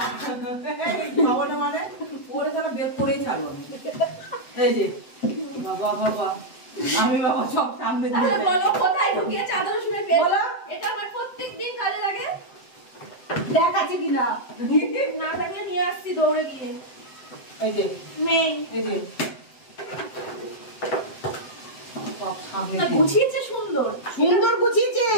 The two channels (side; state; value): right; late; 7.8 ms